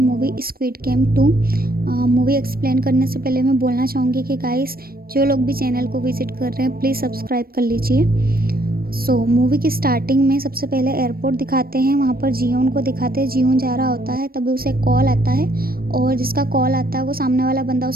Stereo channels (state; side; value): late; left; 0.44 ms